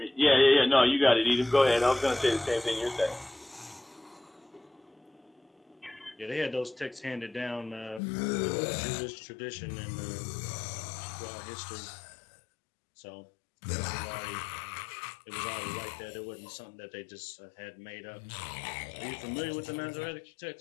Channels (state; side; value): drops out; right; at 8.0 s